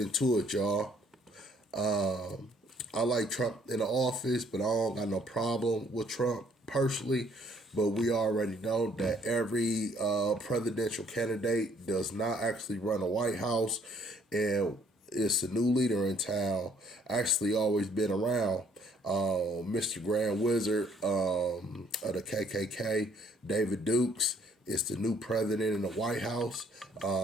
into it, y'all. I like Trump in the office, but I don't got no problem with Trump personally. But we already know that every presidential candidate does not actually run a White House, and it's a new leader in town. Actually, always been around. Mr. Grand Wizard of the KKK, David Dukes, is the new president in the White House.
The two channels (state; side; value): normal; both; correlation 0.63